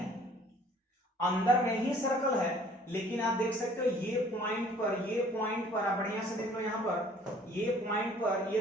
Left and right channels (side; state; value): both; normal; correlation 0.55